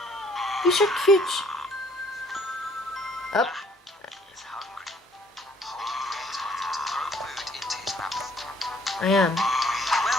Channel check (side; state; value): both; normal; correlation 0.61